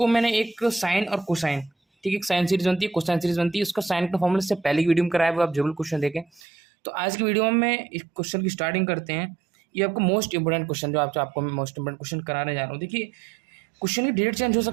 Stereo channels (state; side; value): drops out; left; at 6.4 s